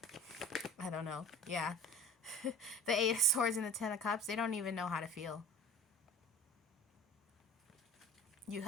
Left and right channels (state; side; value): normal; both; correlation 0.40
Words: I don't know. Yeah. The Eight of Swords and the Ten of Cups, they don't even know how to feel. You